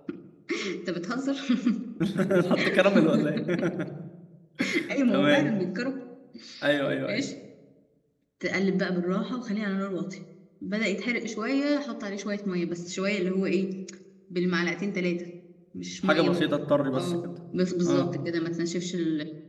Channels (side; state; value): both; identical; correlation 1.00